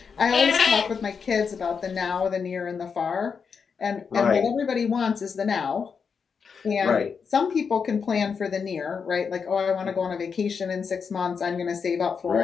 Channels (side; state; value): right; quieter; 6.0 dB